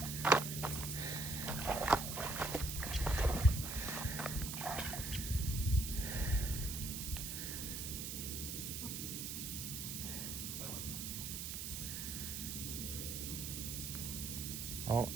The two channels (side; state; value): right; noise; hiss, 4 dB below the sound